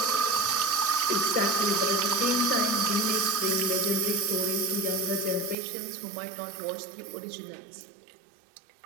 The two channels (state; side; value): drops out; left; at 5.6 s